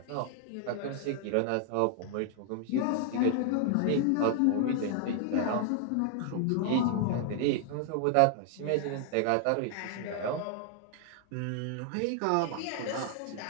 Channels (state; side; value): different; both; correlation 0.00